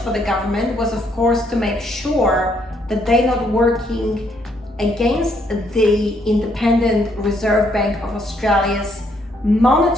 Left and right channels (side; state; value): both; normal; correlation 0.71